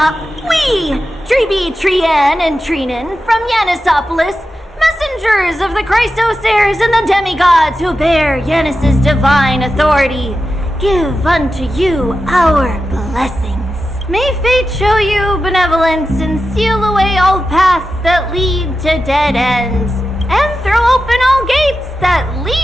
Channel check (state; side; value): normal; both; correlation 0.91